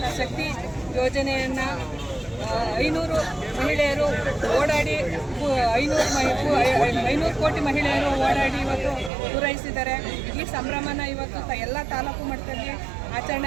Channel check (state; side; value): drops out; left; at 9.1 s